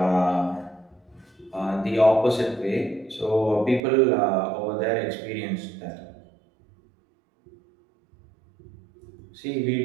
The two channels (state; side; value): drops out; left; at 3.8 s